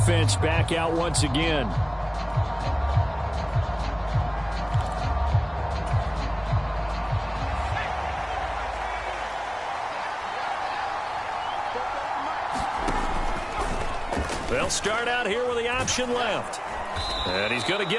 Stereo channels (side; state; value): both; identical; correlation 1.00